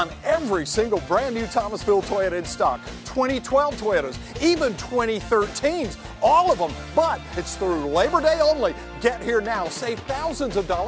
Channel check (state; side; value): identical; both; correlation 1.00